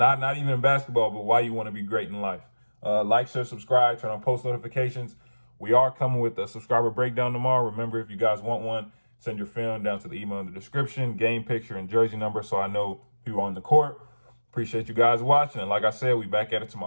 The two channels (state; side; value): inverted; both; correlation -1.00